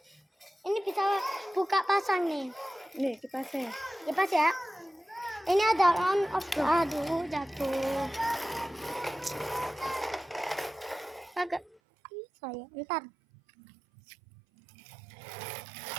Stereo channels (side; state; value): left; drops out; at 11.8 s